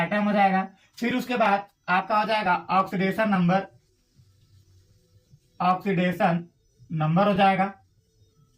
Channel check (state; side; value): identical; both; correlation 1.00